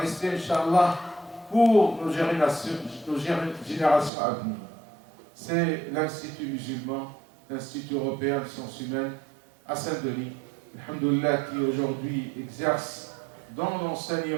Inch'Allah, pour nos générations à venir. C'est l'Institut musulman, l'Institut européen de sciences humaines à Saint-Denis, alhamdoulilah, qui aujourd'hui exerce dans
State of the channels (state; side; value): drops out; left; at 4.1 s